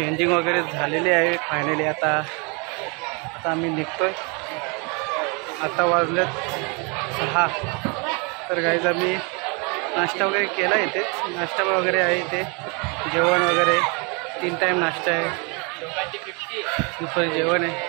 वगैरे झालेली आहे फायनली. आता आम्ही निघतोय. आता वाजलेत 6. तर गाईज आम्ही नाश्ता वगैरे केला इथे. नाश्ता वगैरे आहे इथे, जेवण वगैरे 3 टाईम नाश्ता आहे, दुपारी जेवण आहे,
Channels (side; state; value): left; quieter; 32.2 dB